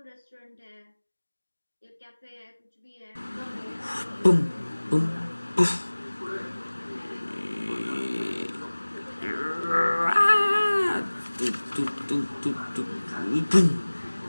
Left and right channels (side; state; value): both; inverted; correlation -1.00